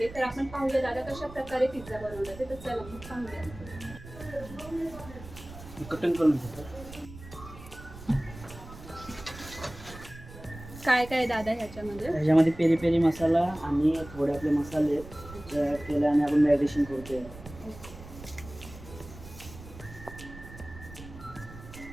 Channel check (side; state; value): right; noise; rumble, 15 dB below the sound